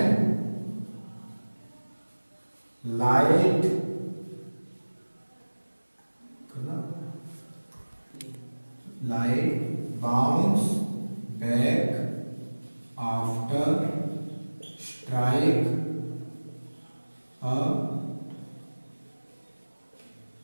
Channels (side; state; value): both; inverted; correlation -1.00